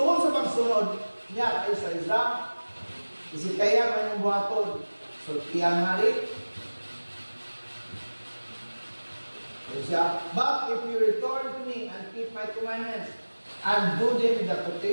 sa pagsunod niya kay sa Islam, isi kaya man yung buhaton, so tiyang hari, but if you return to me and keep my commandments and do them in the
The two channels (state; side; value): inverted; both; correlation -1.00